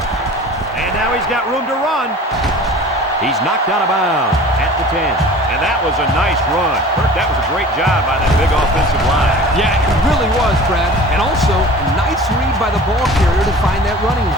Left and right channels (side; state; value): both; normal; correlation 0.42